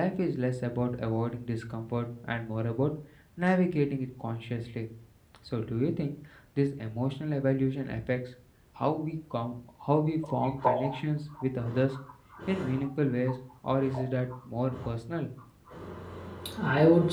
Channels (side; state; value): both; identical; correlation 1.00